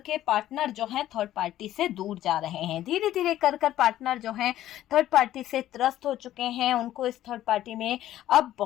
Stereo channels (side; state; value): right; quieter; 13.2 dB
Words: पार्टनर जो है थर्ड पार्टी से दूर जा रहे हैं। धीरे धीरे कर पार्टनर जो है थर्ड पार्टी से त्रस्त हो चुके हैं। उनको इस थर्ड पार्टी में अब